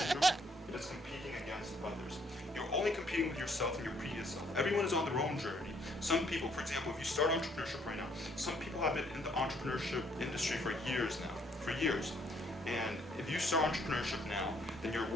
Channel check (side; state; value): both; normal; correlation 0.67